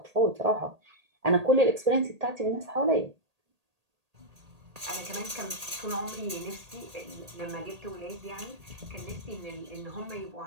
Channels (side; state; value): left; late; 1.8 ms